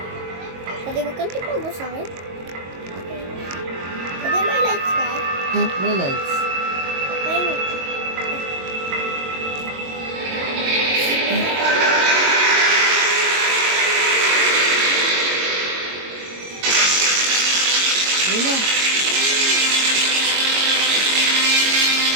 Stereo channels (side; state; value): left; late; 22 ms